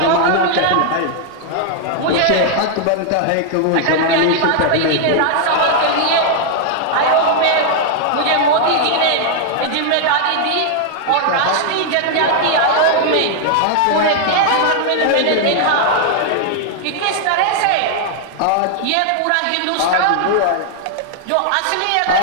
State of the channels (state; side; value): different; both; correlation 0.00